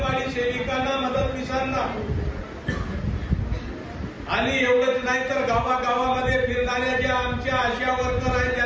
सेविकांना, मदतनीसांना आणि एवढंच नाही तर गावागावामध्ये फिरणाऱ्या ज्या आमच्या आशा वर्कर आहेत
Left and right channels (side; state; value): both; identical; correlation 1.00